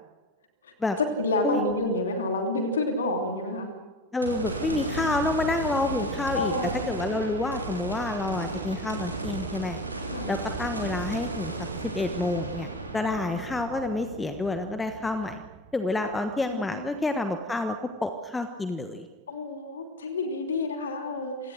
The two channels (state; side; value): normal; both; correlation 0.32